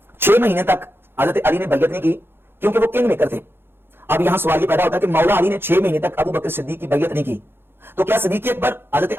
6 महीने तक हजरत अली ने बैयत नहीं की क्योंकि वो किंग मेकर थे। अब यहां सवाल ये पैदा होता है कि मौला अली ने 6 महीने तक अबू बकर सिद्दीक की बैयत नहीं की, तो क्या सिद्दीक अकबर हजरत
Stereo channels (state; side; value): late; left; 0.11 ms